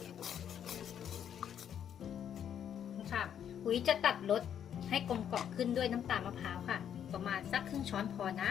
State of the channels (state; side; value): quieter; right; 9.1 dB